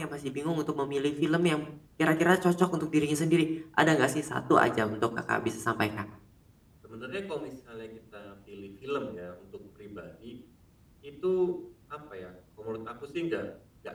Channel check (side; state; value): both; identical; correlation 1.00